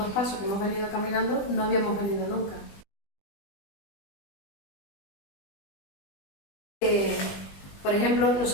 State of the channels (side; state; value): right; late; 20 ms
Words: pasos, que hemos venido caminando, no habíamos venido nunca. Por ejemplo,